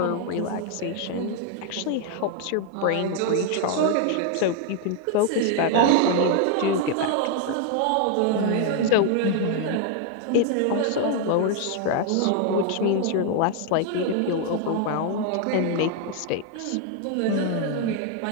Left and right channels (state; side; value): different; both; correlation 0.00